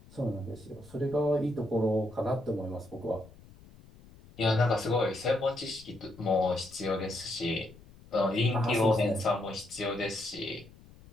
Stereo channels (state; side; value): noise; left; rumble, 23 dB below the sound